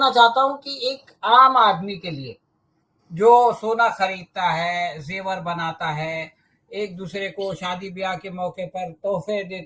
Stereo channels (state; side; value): identical; both; correlation 1.00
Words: चाहता हूँ कि एक आम आदमी के लिए जो सोना खरीदता है, जेवर बनाता है, एक दूसरे को शादी ब्याह के मौके पर तोहफे